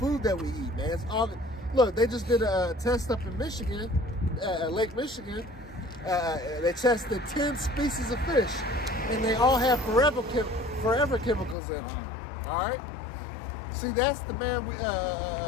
that we eat, man. It's all. Look, they just did a test up in Michigan, Lake Michigan. They tested 10 species of fish, and they all have forever chemicals in them, all right? See, that's the man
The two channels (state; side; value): drops out; right; at 11.6 s